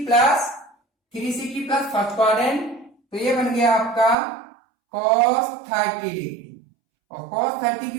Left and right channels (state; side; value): drops out; left; at 4.2 s